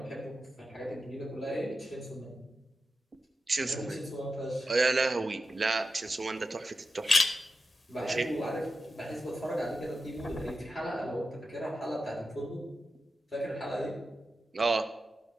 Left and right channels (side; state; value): both; normal; correlation 0.90